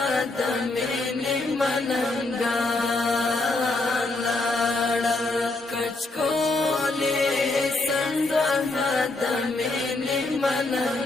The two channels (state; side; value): quieter; right; 3.1 dB